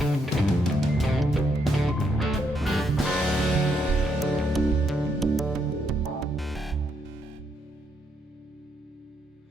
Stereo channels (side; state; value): both; normal; correlation 0.76